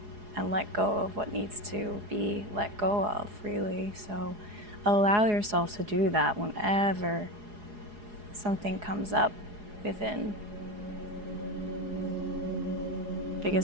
and let go of what needs to be let go of, really. So allow yourself to do that whenever something comes up within.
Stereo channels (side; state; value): left; late; 4.8 ms